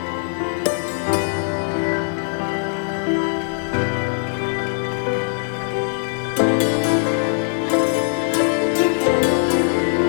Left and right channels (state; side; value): silent; right; 61 dB below the other